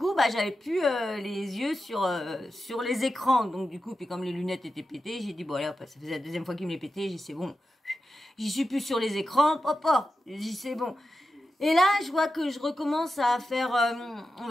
j'avais plus les yeux sur les écrans. Donc du coup, puis comme les lunettes étaient pétées, j'ai dit bon allez, ça faisait la deuxième fois qu'il me les pétait, j'ai dit c'est bon. J'y suis plus sur les écrans, papa. J'ai dit c'est bon. Et là, je vois que je recommence à faire, on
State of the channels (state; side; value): normal; both; correlation 0.91